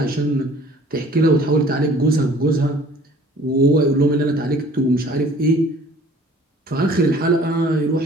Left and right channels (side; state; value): both; normal; correlation 0.53